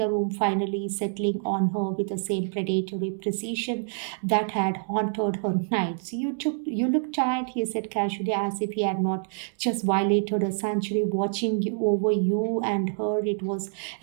room, finally settling on her with the same predatory precision that had haunted her nights. You look tired, he said casually, as if he had not just violated a century watching over you and her. It was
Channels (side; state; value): left; silent; digital silence